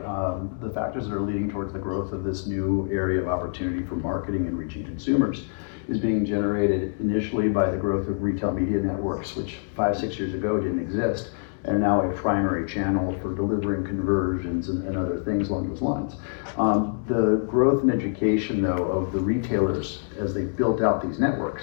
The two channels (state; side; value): silent; right; digital silence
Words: the factors that are leading towards the growth of this new area of opportunity for marketing and reaching consumers is being generated initially by the growth of retail media networks, which 5-6 years ago didn't exist, and are now a primary channel for delivering conversions and other things along those lines. The growth and education, though, of the retailers as they built out these